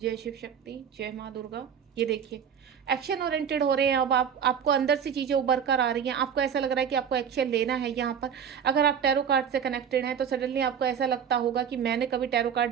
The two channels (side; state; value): left; quieter; 7.9 dB